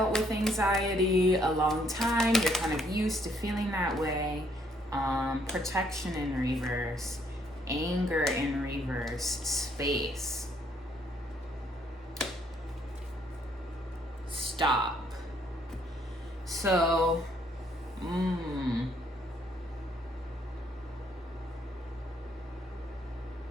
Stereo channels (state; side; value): normal; both; correlation 0.68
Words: with anxiety a long time. You're kind of used to feeling that way. Protection in reverse, anger in reverse, space. stop. So,